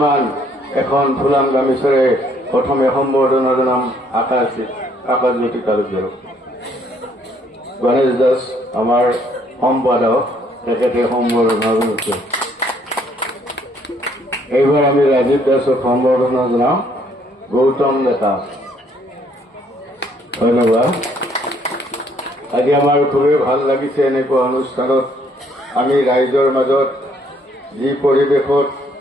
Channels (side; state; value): both; normal; correlation 0.66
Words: এখন ফুলাম গামোচাৰে প্ৰথমে সম্বৰ্ধনা জনাম আকাশজ্যোতি তালুকদাৰক। গণেশ দাস আমাৰ সম্পাদক, তেখেতে সম্বৰ্ধনা জনাইছে। এইবাৰ আমি ৰাজীৱ দাসক সম্বৰ্ধনা জনাম। গৌতম ডেকা, ধন্যবাদ। আজি আমাৰ খুবেই ভাল লাগিছে এনেকুৱা অনুষ্ঠানত আমি ৰাইজৰ মাজত যি পৰিৱেশত